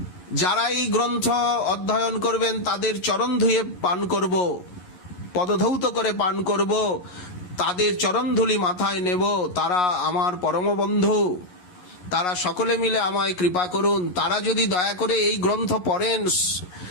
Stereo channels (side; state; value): right; late; 11 ms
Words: যারা এই গ্রন্থ অধ্যয়ন করবেন তাদের চরণ ধুয়ে পান করব, পদধৌত করে পান করব, তাদের চরণধুলি মাথায় নেব। তারা আমার পরম বন্ধু, তারা সকলে মিলে আমায় কৃপা করুন। তারা যদি দয়া করে এই গ্রন্থ পড়েন